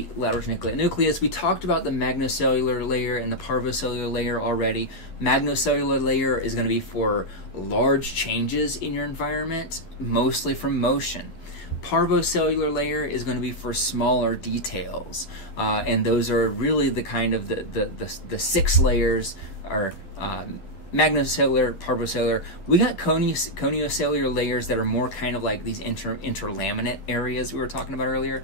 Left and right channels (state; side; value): late; right; 11 ms